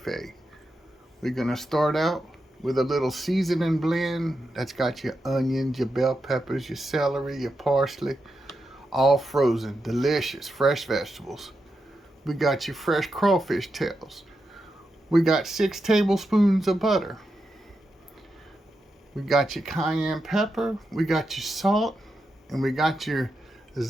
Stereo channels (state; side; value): normal; both; correlation 0.87